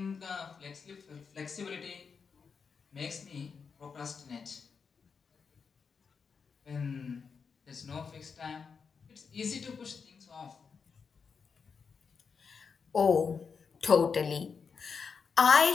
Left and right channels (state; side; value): quieter; right; 5.7 dB